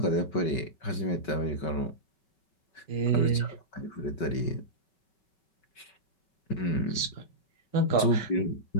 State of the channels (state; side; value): late; right; 5.3 ms